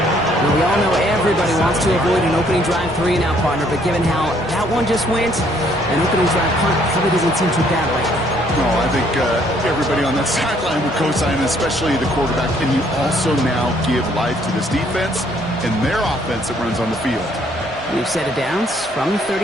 Now, we all know everybody wants to avoid an opening drive 3-and-out, partner, but given how that one just went, an opening drive punt probably doesn't seem too bad right now. No, I think everybody on that sideline would co-sign, especially the quarterback. And you also now give life to this defense and their offense that runs on the field. We've set it down from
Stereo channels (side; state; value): both; normal; correlation 0.65